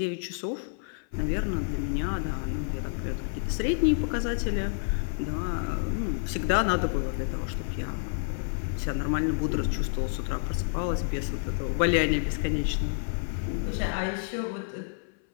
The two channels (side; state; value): right; silent; 56 dB below the other